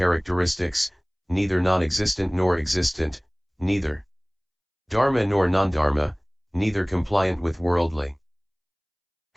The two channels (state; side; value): identical; both; correlation 1.00